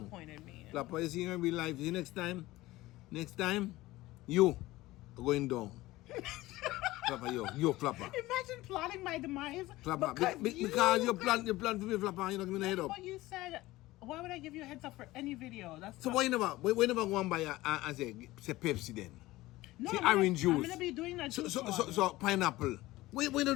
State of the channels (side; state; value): right; quieter; 18.2 dB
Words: me. Flapper, you see in real life. See next time, you are going down. Flapper, you Flapper. Imagine plotting my demise. Flapper, because you plan for me, Flapper. You don't give me the head up. What you said. Why would I give you a heads up for any video? That's So why you never go and buy and say Pepsi then? no, say I'm orange gonna, juice. I'm gonna be doing that. So pineapple. Why don't